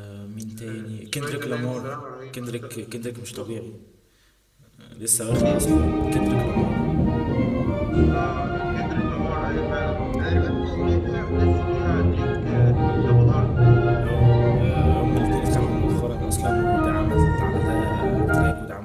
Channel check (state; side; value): identical; both; correlation 1.00